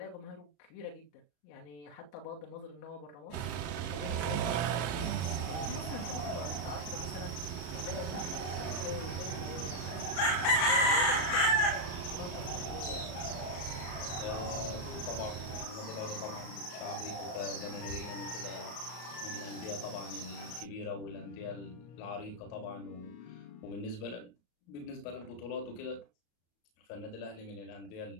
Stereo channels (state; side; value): late; right; 34 ms